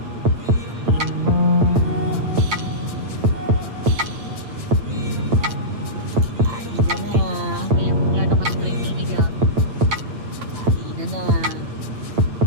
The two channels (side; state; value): left; late; 8.7 ms